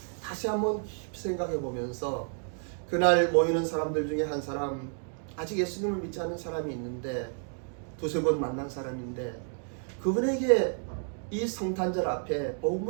다시 한번 깊이 생각해 보면서 그날 모이는 사람들 중에 한 사람, 아직 예수님을 믿지 않는 사람이 있는데 두세 번 만난 사람인데 그분에게 이 성탄절 앞에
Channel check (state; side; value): silent; left; 56 dB below the other